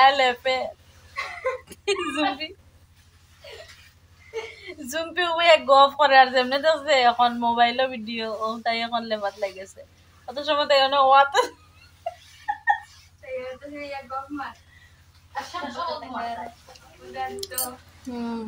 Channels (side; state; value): both; identical; correlation 1.00